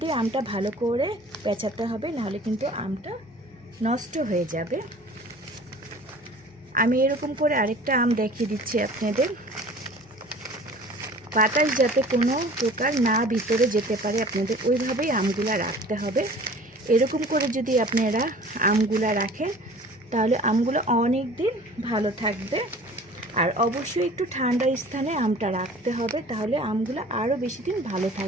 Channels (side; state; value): both; normal; correlation 0.46